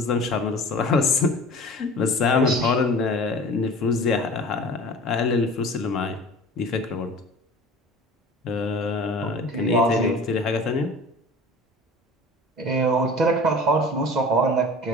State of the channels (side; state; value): both; normal; correlation 0.41